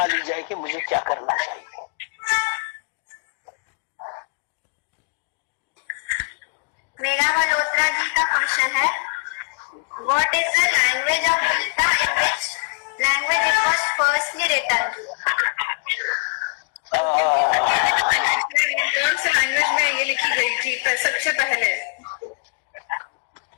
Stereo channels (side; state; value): right; quieter; 39.0 dB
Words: ली जाए कि मुझे क्या करना चाहिए। मेरा मल्होत्रा जी का क्वेश्चन है, what is the language of Gita, in which language it was firstly written? कौन से लैंग्वेज में ये लिखी गई थी सबसे पहले?